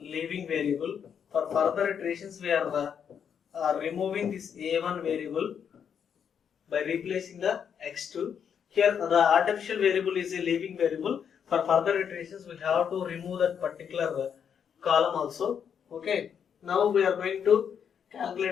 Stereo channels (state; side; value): quieter; right; 7.7 dB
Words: variable. For further iterations, we are removing this a1 variable by replacing the x2. Here the artificial variable is a leaving variable. For further iterations, we have to remove that particular column also. Okay. Now we are going to